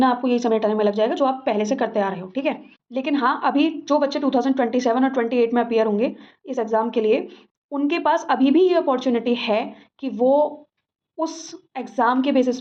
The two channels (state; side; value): identical; both; correlation 1.00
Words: आपको यही समेटने में लग जाएगा जो आप पहले से करते आ रहे हो, ठीक है। लेकिन हाँ, अभी जो बच्चे 2027 और 28 में अपियर होंगे इस एग्जाम के लिए, उनके पास अभी भी ये अपॉर्चुनिटी है कि वो उस एग्ज़ाम के बेसिस